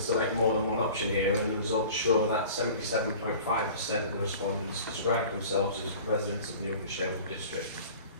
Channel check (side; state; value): both; inverted; correlation -0.42